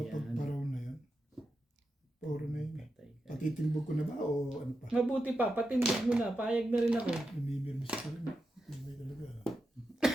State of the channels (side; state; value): both; normal; correlation 0.88